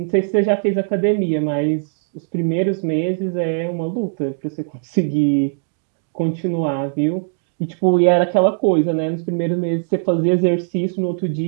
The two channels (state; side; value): silent; left; digital silence